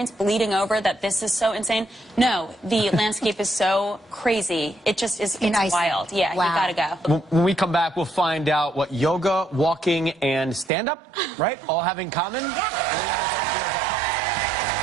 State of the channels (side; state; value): left; drops out; at 10.7 s